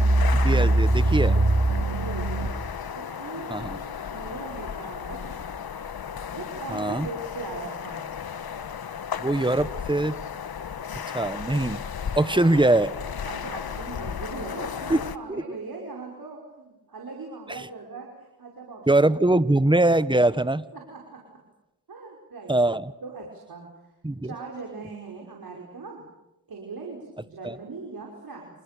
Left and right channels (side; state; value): both; normal; correlation 0.72